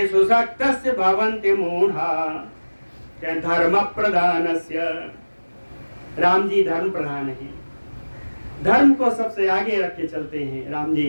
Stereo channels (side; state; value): both; inverted; correlation -1.00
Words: शक्तस्य भवन्ति मूढ़ा। धर्म प्रधानस्य, राम जी धर्म प्रधान है, धर्म को सबसे आगे रख के चलते हैं राम